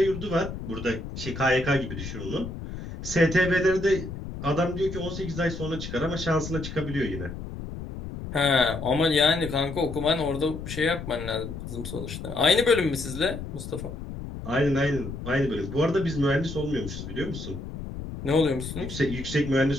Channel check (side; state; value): left; noise; rumble, 8 dB below the sound